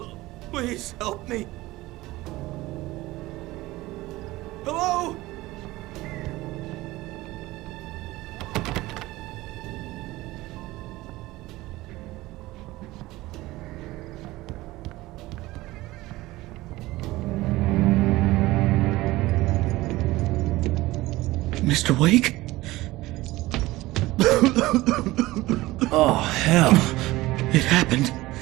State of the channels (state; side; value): quieter; left; 18.6 dB